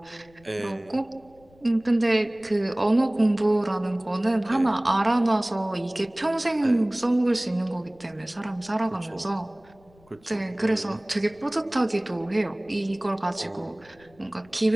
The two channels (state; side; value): noise; left; rumble, 29 dB below the sound